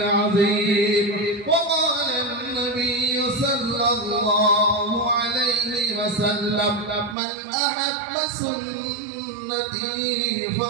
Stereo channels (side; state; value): left; drops out; at 7.2 s